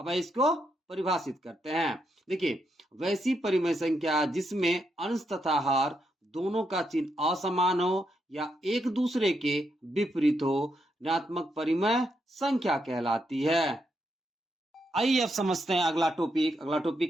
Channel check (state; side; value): normal; both; correlation 0.80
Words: इसको परिभाषित करते हैं। देखिए, वैसी परिमेय संख्या जिसमें अंश तथा हर दोनों का चिन्ह असमान हो या एक दूसरे के विपरीत हो, ऋणात्मक परिमेय संख्या कहलाती है। आइए अब समझते हैं अगला टॉपिक। अगला